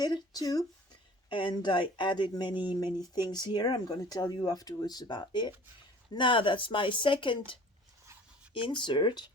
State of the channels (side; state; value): both; normal; correlation 0.47